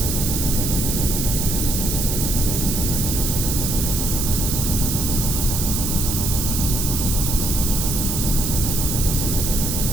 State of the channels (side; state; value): right; noise; hiss, 2 dB below the sound